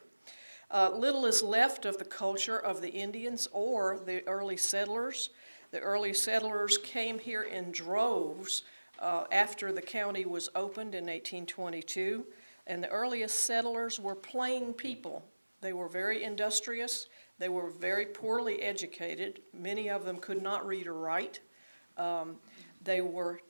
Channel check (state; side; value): inverted; both; correlation -1.00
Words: Little is left of the culture of the Indians or the early settlers. The early settlers came here in droves after the county was opened in 1822, and the earliest settlers were plain people. They were very industrious. They were very poorly educated. Many of them could not read or write. They were